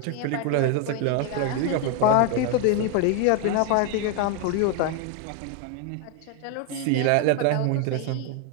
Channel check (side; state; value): both; different; correlation 0.01